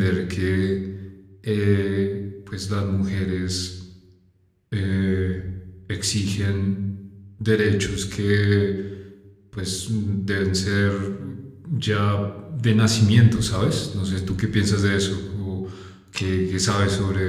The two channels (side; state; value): both; identical; correlation 1.00